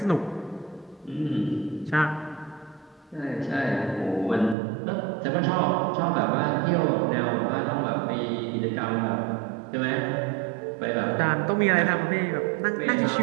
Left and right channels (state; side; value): drops out; left; at 4.5 s